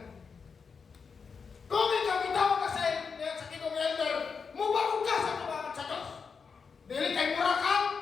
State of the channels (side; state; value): right; quieter; 5.6 dB